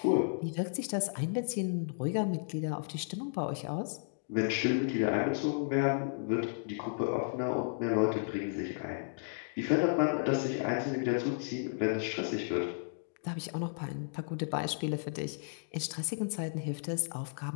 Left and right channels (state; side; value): silent; right; digital silence